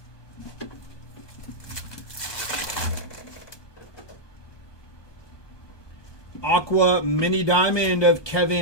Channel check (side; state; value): right; late; 1.2 ms